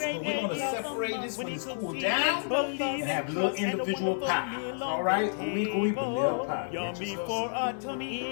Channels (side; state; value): right; silent; digital silence